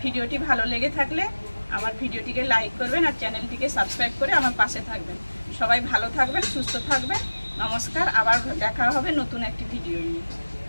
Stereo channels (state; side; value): inverted; both; correlation -1.00